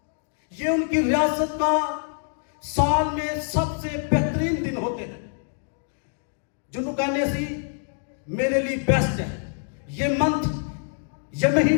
یہ ان کی ریاست کا سال میں سب سے بہترین دن ہوتے ہیں، جنہوں کہنے سی میرے لیے بیسٹ ہے. یہ منتھ، یہ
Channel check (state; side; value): silent; right; 62 dB below the other